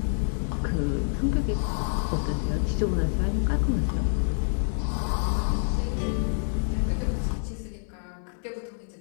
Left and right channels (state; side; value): silent; right; digital silence